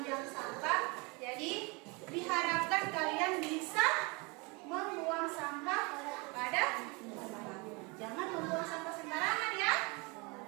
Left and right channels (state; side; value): quieter; left; 28.7 dB